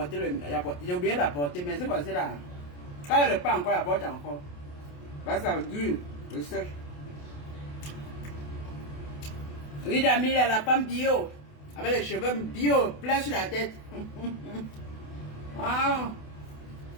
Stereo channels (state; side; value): late; right; 28 ms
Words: d'apporter mais c'est passé là. Quand il n'y a pas encore, il apporte encore. Parce que ça dure, le sèche. Oui, Damil, la femme bio, avec les cheveux bio, plein sur la tête. Ah.